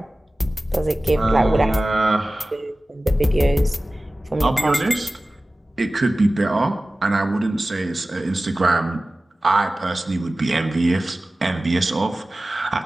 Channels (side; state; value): both; normal; correlation 0.97